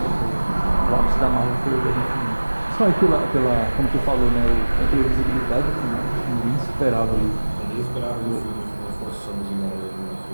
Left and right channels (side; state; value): both; inverted; correlation -1.00